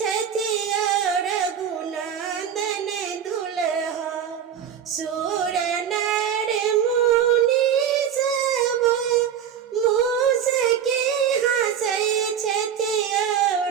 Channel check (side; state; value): left; quieter; 8.5 dB